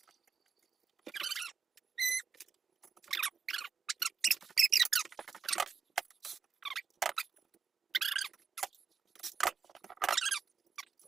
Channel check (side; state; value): left; quieter; 6.0 dB